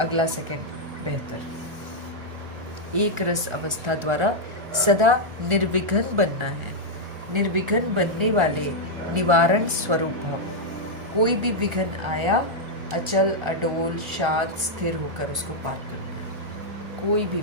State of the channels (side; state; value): left; late; 1.4 ms